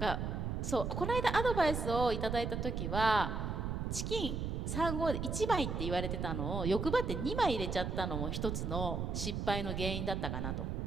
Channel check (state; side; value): noise; right; rumble, 2 dB below the sound